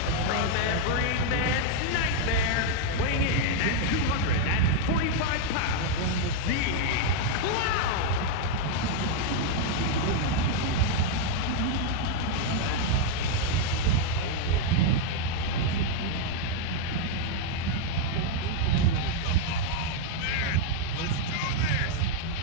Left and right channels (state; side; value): different; both; correlation 0.00